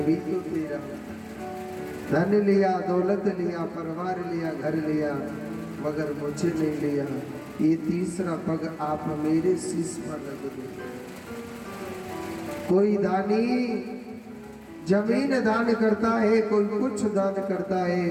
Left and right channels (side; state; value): both; identical; correlation 1.00